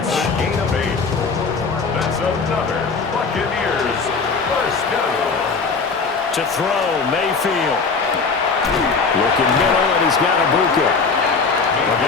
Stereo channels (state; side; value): quieter; right; 4.7 dB